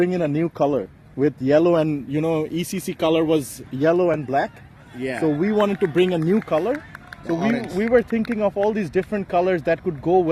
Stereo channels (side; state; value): both; identical; correlation 1.00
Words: in a new color with yellow, and ECC color was yellow and black. Yeah. So we wanted to bring a new color. So we were thinking of all these different colors that could go